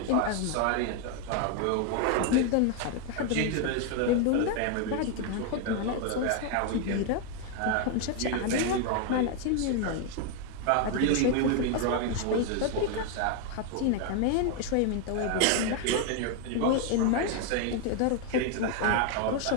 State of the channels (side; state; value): both; different; correlation 0.01